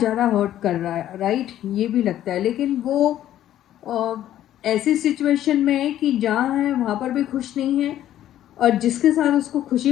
हर्ट कर रहा है, राइट, ये भी लगता है। लेकिन वो अ, ऐसी सिचुएशन में है कि जहाँ है वहाँ पर भी खुश नहीं है, और जिसके साथ उसको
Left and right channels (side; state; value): right; quieter; 12.2 dB